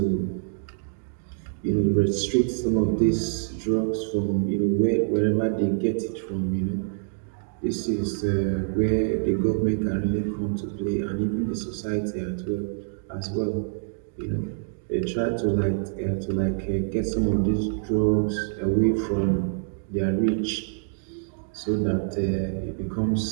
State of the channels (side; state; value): left; silent; digital silence